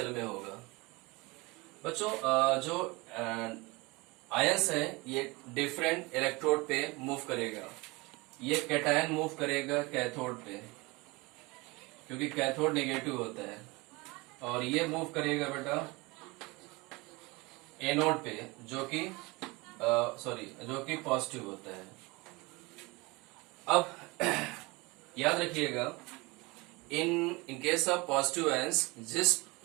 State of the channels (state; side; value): quieter; left; 24.6 dB